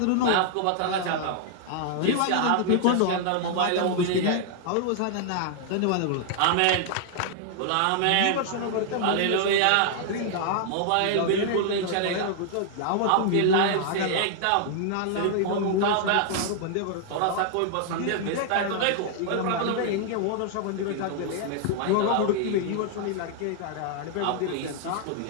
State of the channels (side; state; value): both; different; correlation 0.00